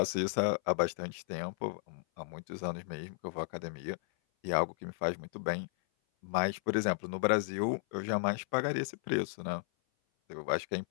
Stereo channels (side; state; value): right; silent; 55 dB below the other